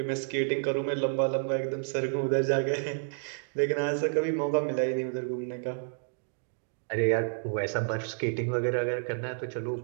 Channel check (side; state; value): left; silent; digital silence